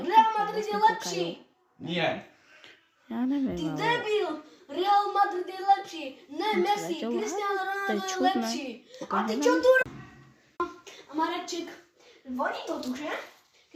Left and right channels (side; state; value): both; identical; correlation 1.00